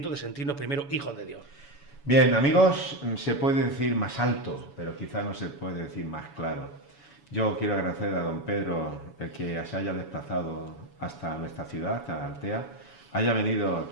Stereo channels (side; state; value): right; late; 7.1 ms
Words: de sentirnos primero hijos de Dios. Bien, amigos, se puede decir más alto, pero quizá no se puede decir más claro. Yo quiero agradecer a don Pedro el que se haya desplazado hasta nuestra ciudad, hasta Altea, haya venido